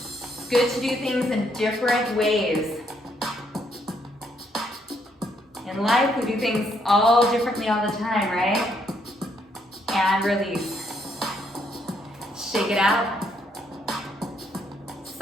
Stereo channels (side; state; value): both; normal; correlation 0.72